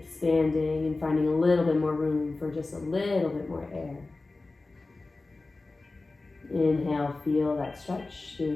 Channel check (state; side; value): quieter; right; 3.4 dB